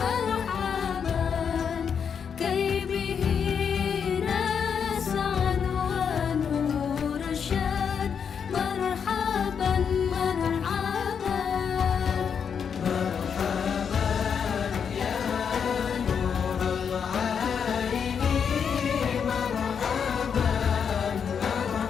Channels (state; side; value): quieter; right; 7.0 dB